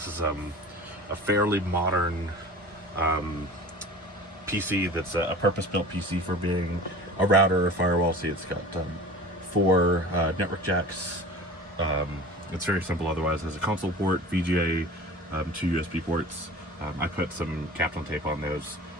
is a fairly modern PC that's a purpose-built PC for being a router or firewall. See, it's got 4 network jacks. It's very simple otherwise. There's a console port, VGA, 2 USB ports. I put some Kaplan tape on those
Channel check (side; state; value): both; normal; correlation 0.39